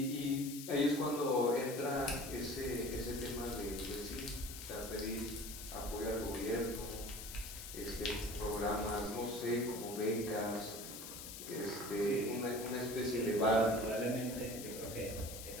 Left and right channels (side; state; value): left; noise; hiss, 10 dB below the sound